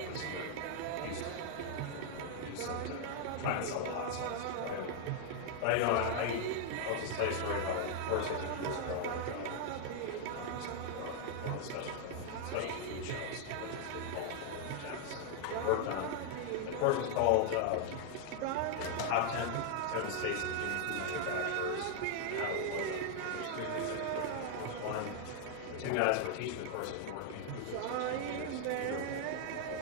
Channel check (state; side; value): different; both; correlation 0.00